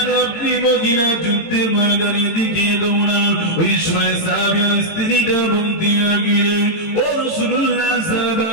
আপনি মহিলা যুদ্ধের ময়দানের দিকে দৌড়ান? ওই সময় সাহাবিয়ার স্ত্রীটা বলতে লাগলেন, ও রাসূলুল্লাহ,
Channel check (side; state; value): right; late; 18 ms